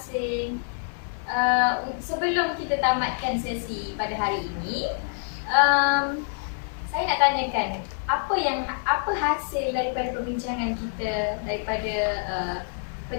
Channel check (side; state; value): right; silent; 61 dB below the other